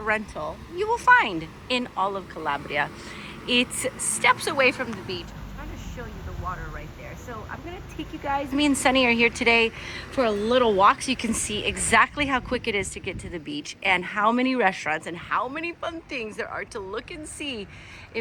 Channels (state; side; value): identical; both; correlation 1.00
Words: you will find in all of Calabria. It's steps away from the beach. I'm trying to show you the water right there. So I'm gonna take you guys, me and Sunny are here today for a little walk so you can see exactly how quick it is to get to the beach and how many restaurants and how many fun things there are to look and see